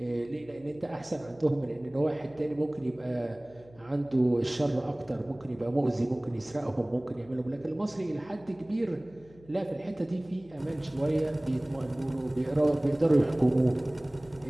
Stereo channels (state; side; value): noise; left; hum, 25 dB below the sound